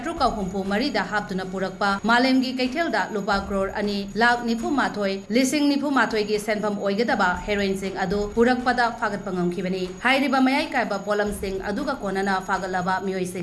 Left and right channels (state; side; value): identical; both; correlation 1.00